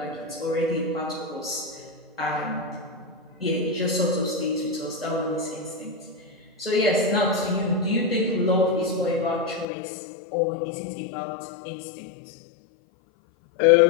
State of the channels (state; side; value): drops out; right; at 9.7 s